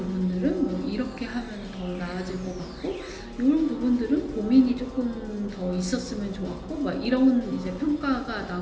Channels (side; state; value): both; identical; correlation 1.00